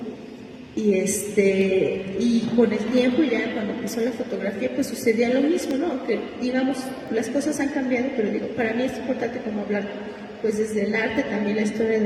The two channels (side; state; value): both; identical; correlation 1.00